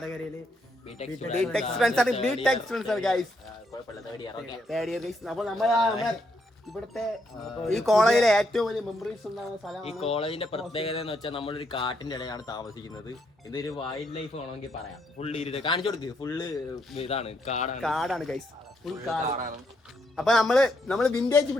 അപ്പോൾ ഇവിടുത്തെ ഈ കോളേജിലെ ഏറ്റവും വലിയ മെമ്മറീസ് ഉണ്ടാകുന്ന സ്ഥലം. ഈ കോളേജിന്റെ പ്രത്യേകത എന്ന് വെച്ചാൽ നമ്മളൊരു കാട്ടിന്റെ ഇടയിലാണ് താമസിക്കുന്നത്. ഇതൊരു വൈൽഡ് ലൈഫ് വേണമെങ്കിൽ പറയാം. ഫുള്ള് ഇരുട്ട് കാണിച്ചു കൊടുക്ക്. ഫുള്ള് ഇതാണ്, കാടാണ് ഗൈസ്, ഫുൾ കാടാണ്. അപ്പൊ നമ്മള് വിന്റേജ്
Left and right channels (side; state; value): both; normal; correlation 0.76